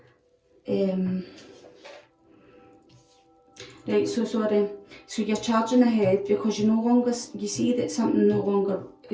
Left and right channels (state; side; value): identical; both; correlation 1.00